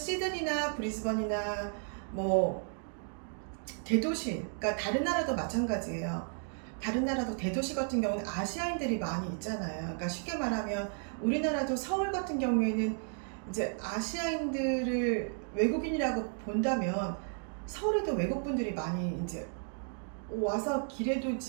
브리즈번이나 뭐 대도시, 그러니까 다른 나라도 마찬가지예요. 다른 나라도 대도시 같은 경우는 아시아인들이 많이 있잖아요. 그러니까 쉽게 말하면 우리나라도 서울 같은 경우에는 이제 아시아인들을 외국인이라고 본다면 서울에도 외국분들이 많이 이제 와서 길에도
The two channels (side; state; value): left; silent; 55 dB below the other